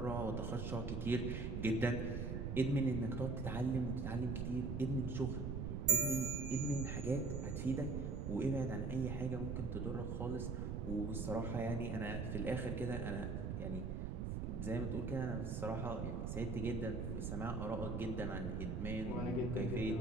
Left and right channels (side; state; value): right; noise; rumble, 2 dB below the sound